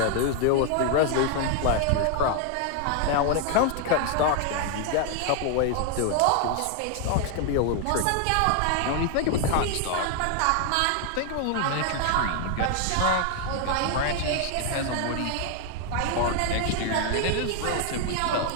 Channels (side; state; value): both; different; correlation 0.00